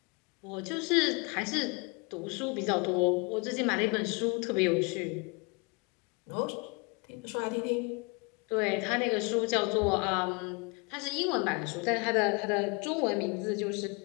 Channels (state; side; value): quieter; right; 30.4 dB